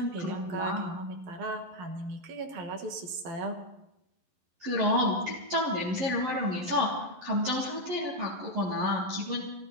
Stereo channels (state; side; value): late; left; 11 ms